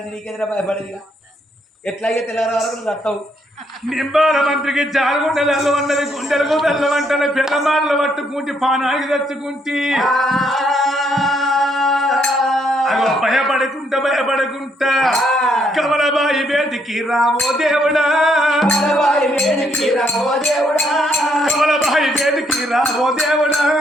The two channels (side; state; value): both; normal; correlation 0.72